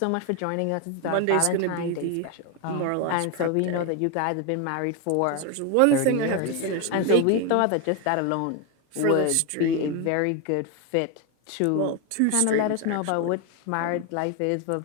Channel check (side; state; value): both; different; correlation 0.01